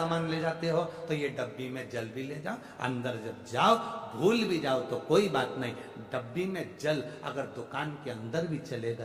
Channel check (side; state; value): both; identical; correlation 1.00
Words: ले जाते हो, तो ये डब्बी में जल भी ले जाओ। अंदर जब जाओ भूल भी जाओ तो कोई बात नहीं, डब्बी में जल अगर दुकान के अंदर भी चले